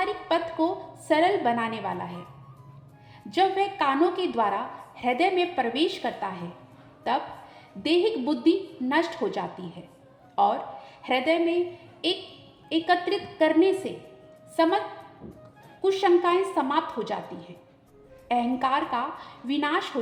पथ को सरल बनाने वाला है। जब वह कानों के द्वारा हृदय में प्रवेश करता है तब दैहिक बुद्धि नष्ट हो जाती है और हृदय में एकत्रित करने से समस्त कुशंकाएं समाप्त हो जाती हैं। अहंकार का विनाश हो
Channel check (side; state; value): both; identical; correlation 1.00